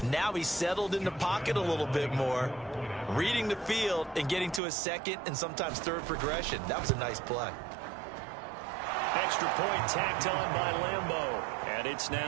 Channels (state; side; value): drops out; left; at 4.6 s